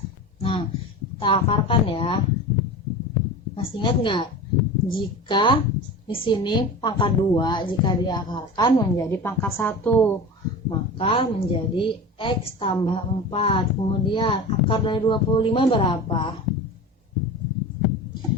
Nah, kita akarkan ya. Masih ingat nggak? Jika di sini pangkat 2 jika diakarkan menjadi pangkat 1, maka menjadi X tambah 4. Kemudian akar dari 25 berapa?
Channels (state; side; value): normal; both; correlation 0.31